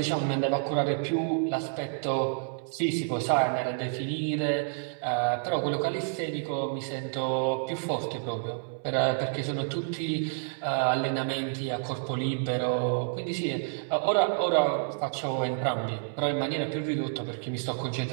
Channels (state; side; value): silent; left; 58 dB below the other